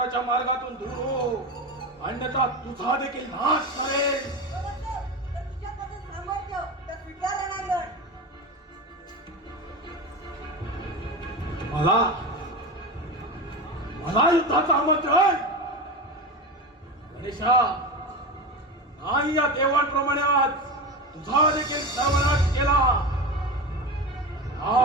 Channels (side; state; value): both; normal; correlation 0.23